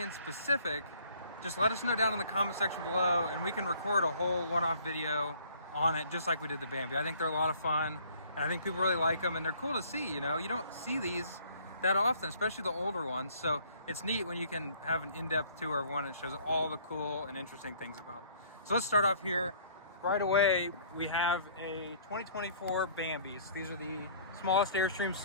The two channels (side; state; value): both; inverted; correlation -0.56